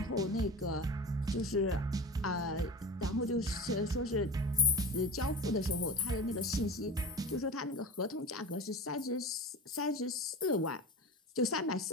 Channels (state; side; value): normal; both; correlation 0.31